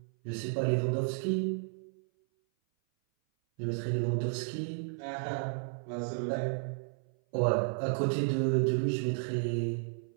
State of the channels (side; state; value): left; silent; 56 dB below the other